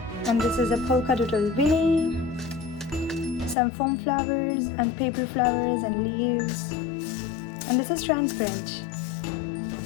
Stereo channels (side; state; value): right; drops out; at 3.6 s